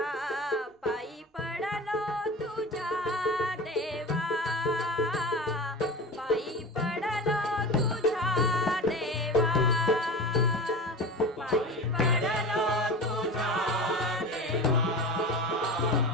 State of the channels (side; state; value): both; normal; correlation 0.32